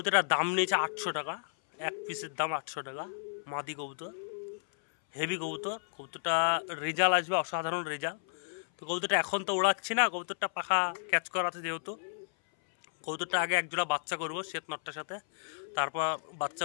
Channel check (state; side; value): silent; right; 56 dB below the other